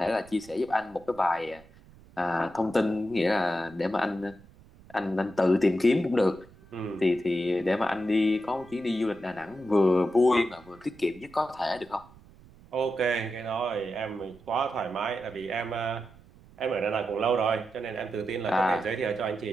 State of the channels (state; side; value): noise; right; rumble, 24 dB below the sound